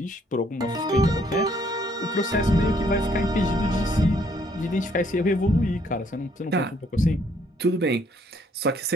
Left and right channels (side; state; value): both; normal; correlation 0.66